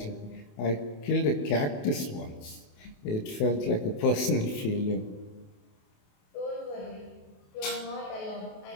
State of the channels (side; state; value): right; late; 28 ms